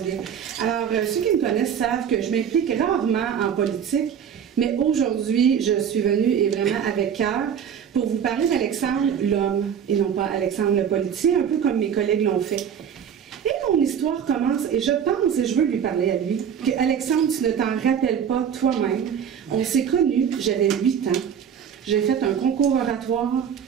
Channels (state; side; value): quieter; left; 8.1 dB